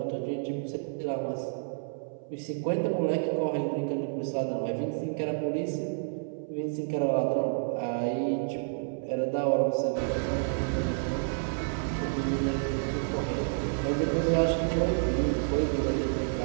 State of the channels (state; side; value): silent; left; 58 dB below the other